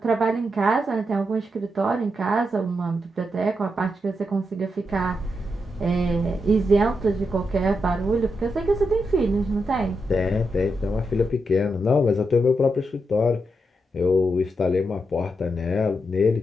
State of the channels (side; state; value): both; normal; correlation 0.84